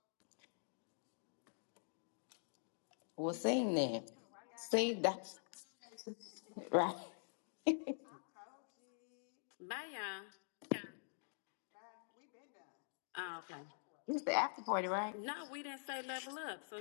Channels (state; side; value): silent; right; digital silence